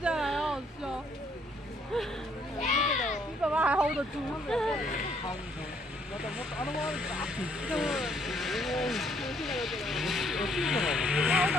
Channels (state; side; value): normal; both; correlation 0.67